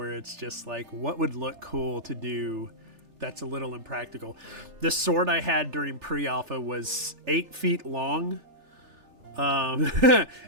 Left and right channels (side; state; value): left; late; 3.4 ms